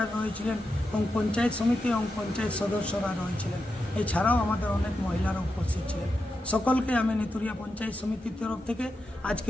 রয়েছিলেন এবং পঞ্চায়েত সমিতি এবং পঞ্চায়েত সদস্যরা রয়েছিলেন। এছাড়াও আমাদের অনেক মহিলারা উপস্থিত ছিলেন। সকলকে আমি নেতুরিয়া পঞ্চায়েত সমিতির তরফ থেকে আজকে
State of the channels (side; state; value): both; normal; correlation 0.88